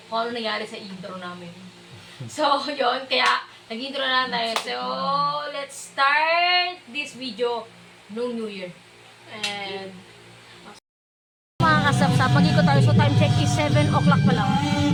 kung ano nangyari sa intro namin. So, yun. Kaya, nag-intro na lang tayo. So, let's start this video nung New Year. And, mga kasap-sap, mag-ikot tayo. So, time check is 7 o'clock pa lang.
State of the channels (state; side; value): identical; both; correlation 1.00